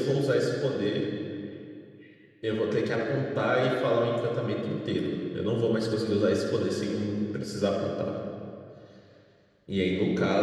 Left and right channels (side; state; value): both; identical; correlation 1.00